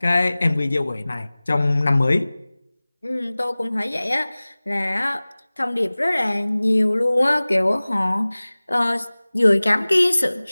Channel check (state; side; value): inverted; both; correlation -0.99